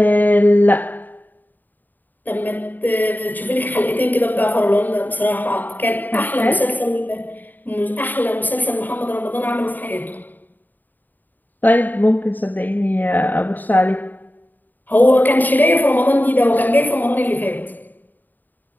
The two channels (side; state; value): right; late; 0.087 ms